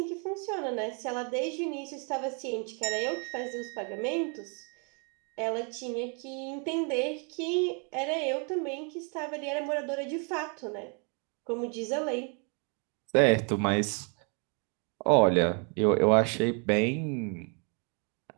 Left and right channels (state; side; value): quieter; left; 37.4 dB